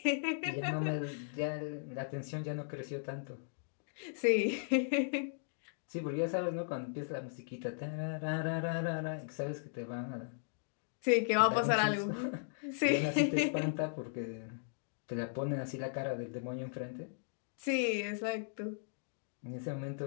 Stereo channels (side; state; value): right; silent; digital silence